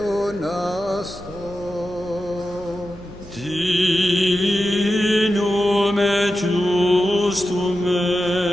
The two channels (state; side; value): noise; right; hum, 21 dB below the sound